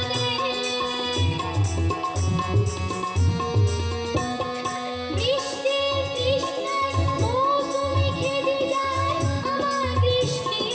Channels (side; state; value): both; identical; correlation 1.00